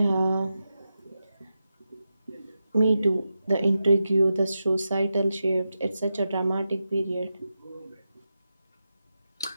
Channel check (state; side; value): inverted; both; correlation -0.90